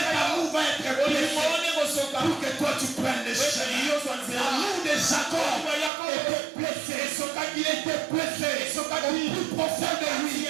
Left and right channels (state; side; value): drops out; left; at 5.9 s